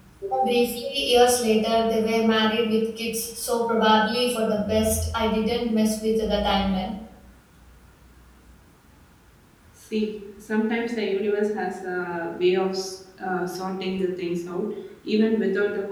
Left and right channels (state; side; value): identical; both; correlation 1.00